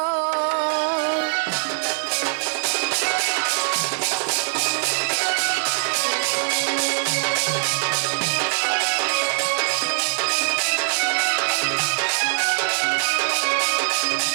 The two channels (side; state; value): left; silent; 64 dB below the other